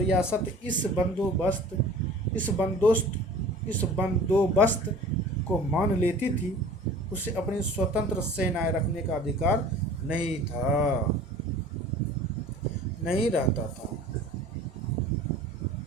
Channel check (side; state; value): both; normal; correlation 0.44